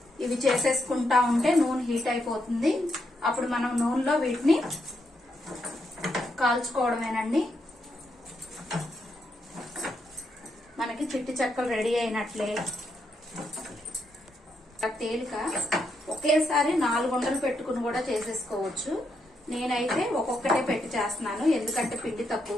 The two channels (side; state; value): both; normal; correlation 0.80